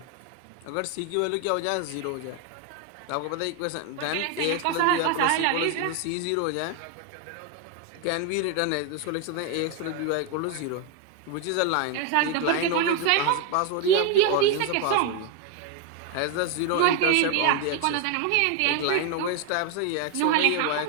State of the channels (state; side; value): different; both; correlation 0.01